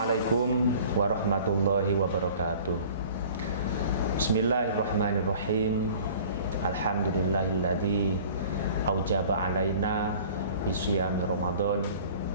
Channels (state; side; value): inverted; both; correlation -0.47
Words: warahmatullahi wabarakatuh. Bismillahirrahmanirrahim. Alhamdulillahilladzi aujaba alaina bisyami Ramadan.